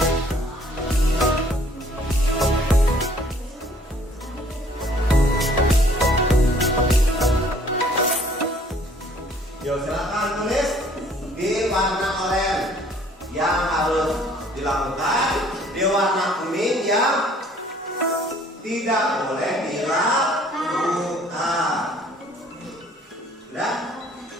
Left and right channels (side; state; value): both; normal; correlation 0.58